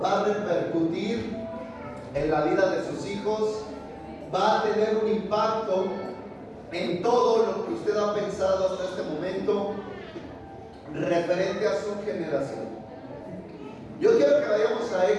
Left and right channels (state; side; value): identical; both; correlation 1.00